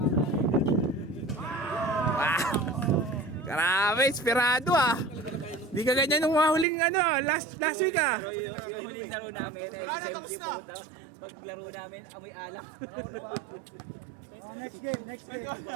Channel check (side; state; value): left; drops out; at 6.7 s